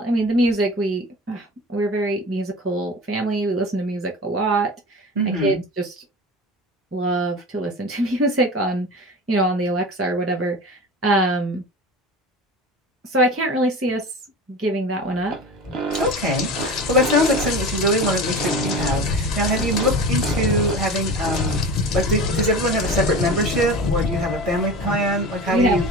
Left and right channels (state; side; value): normal; both; correlation 0.33